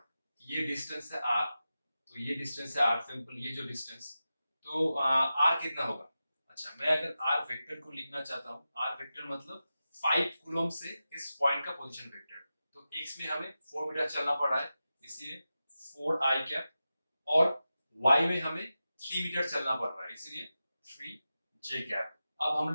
ये डिस्टेंस है R, तो ये डिस्टेंस है R, सिंपल ये जो डिस्टेंस, तो R कितना होगा? अच्छा, मैं अगर आर वेक्टर को लिखना चाहता हूँ, आर वेक्टर मतलब 5 कूलम से इस पॉइंट का पोजीशन वेक्टर। तो एक्स में हमें 4 मीटर चलना पड़ा है, इसलिए 4 आई कैप, और वाई में हमें 3 मीटर चलना पड़ रहा है, इसलिए 3 जे कैप। अब हम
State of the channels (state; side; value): inverted; both; correlation -0.93